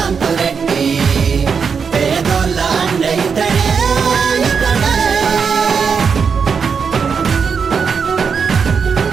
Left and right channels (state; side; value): quieter; left; 6.1 dB